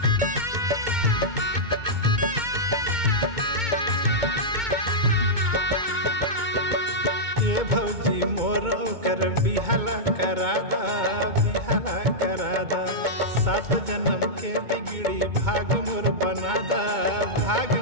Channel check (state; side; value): late; left; 2.2 ms